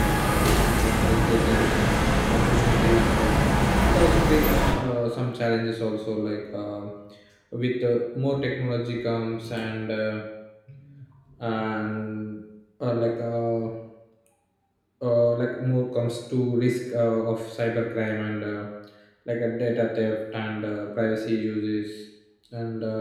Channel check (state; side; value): identical; both; correlation 1.00